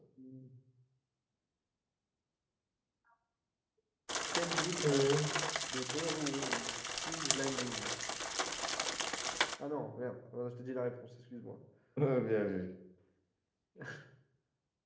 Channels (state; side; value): identical; both; correlation 1.00